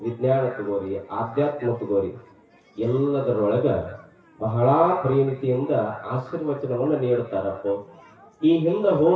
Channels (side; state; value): both; identical; correlation 1.00